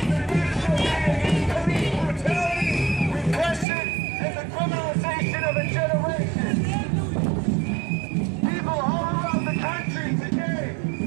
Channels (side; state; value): left; drops out; at 3.7 s